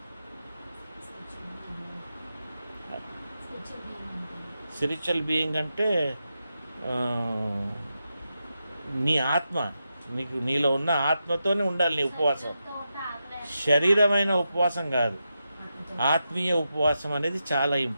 స్పిరిచువల్ బీయింగ్ అంటే నీ ఆత్మ, నీలో ఉన్న ఆత్మతోనే ఉండాలి నీ ఉపవాసం. శరీరమైన ఉపవాసం కాదు, ఆత్మీయ ఉపవాసం అనేది చాలా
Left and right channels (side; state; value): both; inverted; correlation -0.88